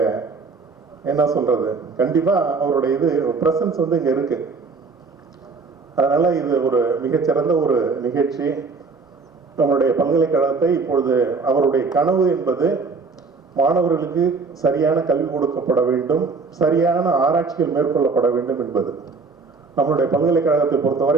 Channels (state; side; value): quieter; left; 4.4 dB